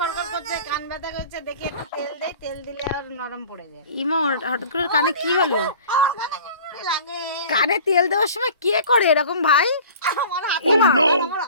করছে, কান ব্যথা করছে, দেখি একটু তেল দেই, তেল দিলে আর নরম পড়ে যায়। ইমা, হঠাৎ করে কানে কি হলো? আমার কানে কেমন লাগে। কানে তেল দেওয়ার সময় কে করে এরকম ভাই? আমার হাতে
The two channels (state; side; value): inverted; both; correlation -0.43